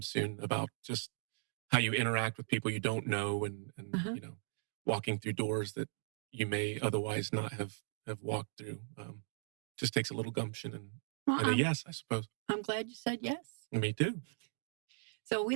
soon, about just how you interact with people you don't know, and walking through doors that you may otherwise not have walked through. Just takes a little gumption and a yes, I suppose. I'm glad you said yes. Me too. So we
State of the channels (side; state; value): left; silent; digital silence